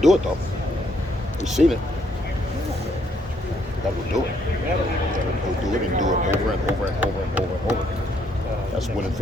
it though. We've seen it. We got to go do it. We got to go do it and do it over and over and over and over and over. That's winning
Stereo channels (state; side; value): normal; both; correlation 0.71